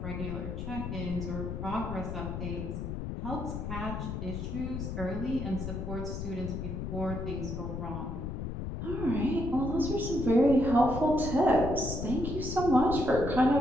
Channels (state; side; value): noise; left; rumble, 5 dB below the sound